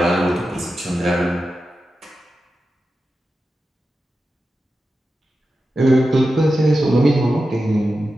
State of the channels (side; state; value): both; normal; correlation 0.91